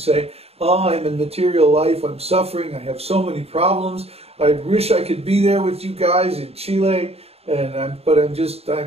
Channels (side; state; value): left; late; 0.29 ms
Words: oh, I'm in material life, I'm suffering, I have so many problems, I wish I could be there with you guys in Chile, but